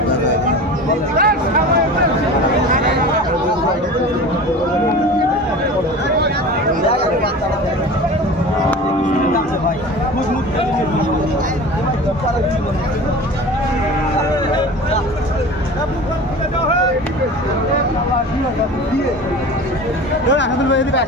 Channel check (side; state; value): both; normal; correlation 0.36